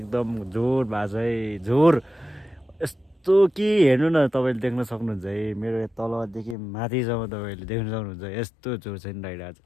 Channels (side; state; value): right; drops out; at 6.6 s